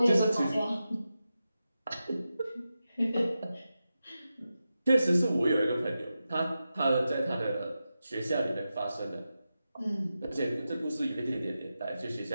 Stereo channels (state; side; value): inverted; both; correlation -0.91